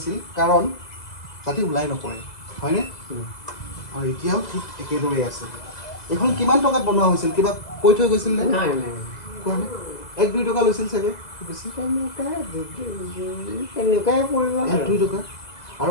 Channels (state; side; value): late; right; 2.0 ms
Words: কাৰণ যাতে ওলাই নপৰে হয়নে আৰু এতিয়াও ঠিক একেদৰেই আছে এইখন কিমান টকাত বনোৱা হৈছিল কিবা কৈ থৈ গৈছিল নে 1-2 টকা লৈছিল চাগে বেছি 1-2 টকা আৰু